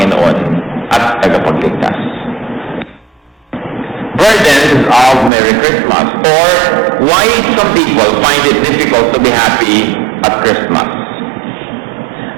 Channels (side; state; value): left; drops out; at 5.3 s